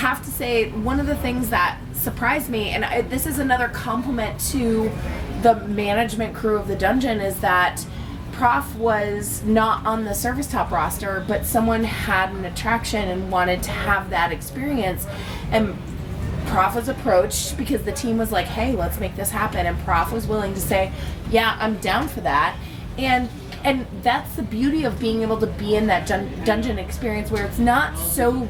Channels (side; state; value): both; identical; correlation 1.00